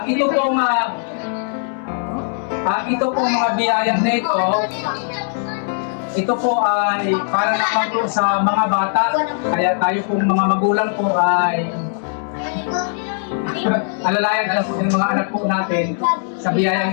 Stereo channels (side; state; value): right; silent; digital silence